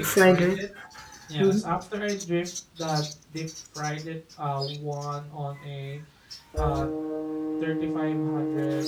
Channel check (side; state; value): both; identical; correlation 1.00